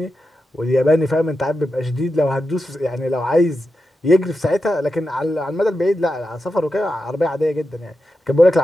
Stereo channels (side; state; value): both; normal; correlation 0.89